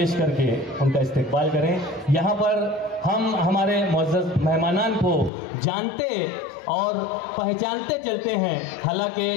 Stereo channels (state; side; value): drops out; right; at 5.3 s